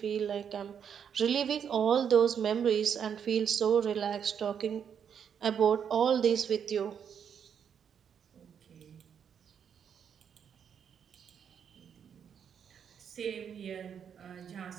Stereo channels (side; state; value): left; quieter; 7.8 dB